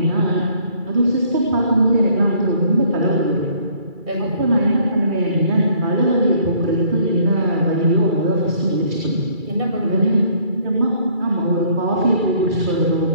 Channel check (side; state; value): left; late; 2.3 ms